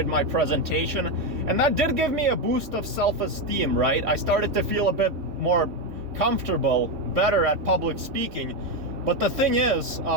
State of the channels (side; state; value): left; late; 3.6 ms